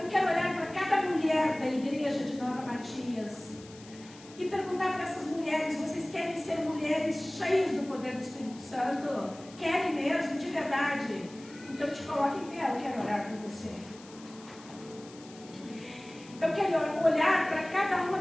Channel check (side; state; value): left; noise; hiss, 21 dB below the sound